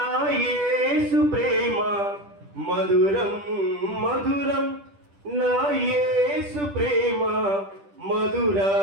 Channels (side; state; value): left; late; 10 ms